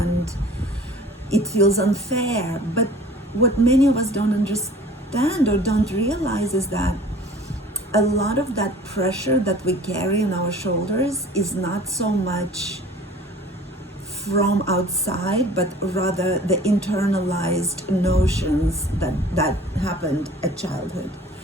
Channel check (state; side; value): normal; both; correlation 0.47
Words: it feels unfair. But what many of us don't understand or don't realize is that a lot of that pressure that we carry on our shoulders is not so much from outside, but rather the internalized notions that happened at childhood.